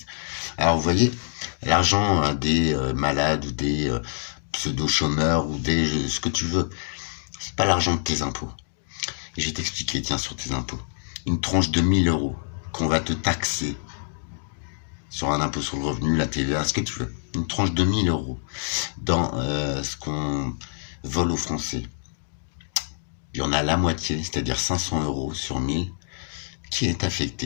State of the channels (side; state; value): right; silent; digital silence